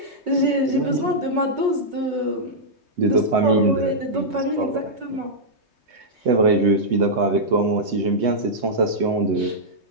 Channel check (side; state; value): left; late; 3.2 ms